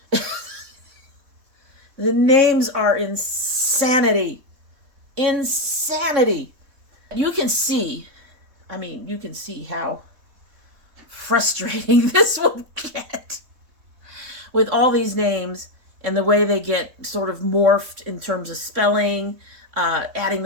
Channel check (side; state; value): left; late; 3.7 ms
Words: The names are insanity. Insanity. You can see how frustrating this will get with all these names and the way they get sort of morphed in terms of spelling, adding